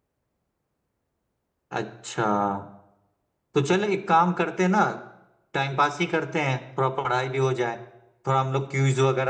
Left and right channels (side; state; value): both; identical; correlation 1.00